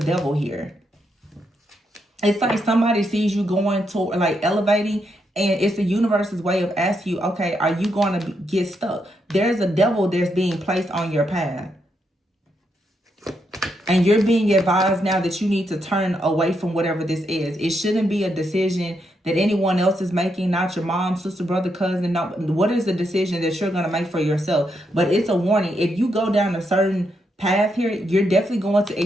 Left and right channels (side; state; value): both; normal; correlation 0.80